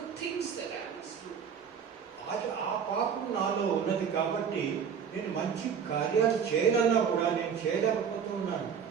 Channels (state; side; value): quieter; left; 7.3 dB